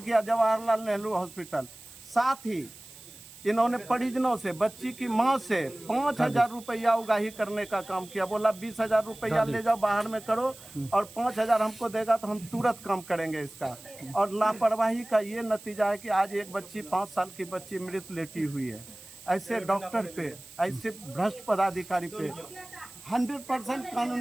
किया जवाहरलाल नेहरू हॉस्पिटल। साथ ही इन्होंने परिजनों से, बच्ची की माँ से 5,000 रुपया उगाही करने का काम किया। बोला 20,000 रुपया ले जाओ बाहर में करो और 5,000 हमको देगा तो हम तुरंत काम करेंगे इसका। और लापरवाही का ये नतीजा है कि आज एक बच्ची 5 साल की बच्ची मृत लेटी हुई है। ऐसे डॉक्टर पे, ऐसे भ्रष्ट पदाधिकारी पे 100%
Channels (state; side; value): noise; right; hiss, 19 dB below the sound